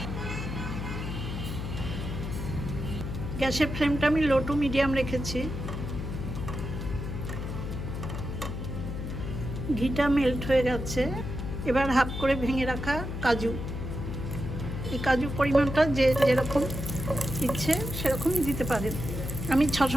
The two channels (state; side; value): noise; left; hum, 5 dB below the sound